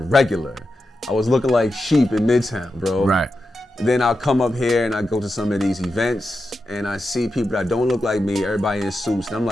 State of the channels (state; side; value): normal; both; correlation 0.89